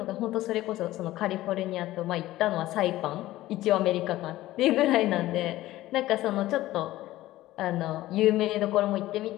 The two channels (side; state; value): right; quieter; 16.0 dB